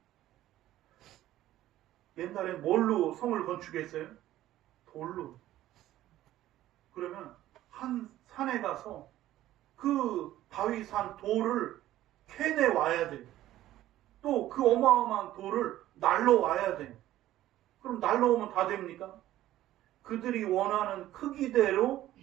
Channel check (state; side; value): quieter; left; 14.1 dB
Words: 옛날엔 뭘로 성을 건축했어요? 돌로. 그러면 한 산에 가서 그 바위산 돌을 캐내 와야 돼. 또 그 어마어마한 돌을 날로 와야 돼. 그럼 날로 오면 다 됩니까? 그들이 원하는 크기대로